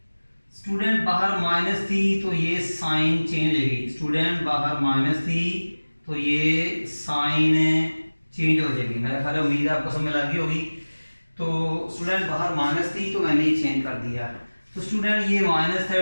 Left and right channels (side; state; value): both; inverted; correlation -1.00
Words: स्टूडेंट बाहर माइनस थी तो ये साइन चेंज होगी, स्टूडेंट बाहर माइनस थी तो ये साइन चेंज हो जाएगी। मेरा ख्याल उम्मीद है आपको समझ लगी होगी। तो स्टूडेंट बाहर माइनस थी तो मैंने ये चेंज कर दिया। तो स्टूडेंट ये minus